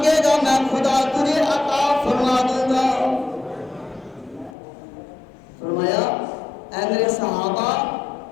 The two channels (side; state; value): right; drops out; at 4.5 s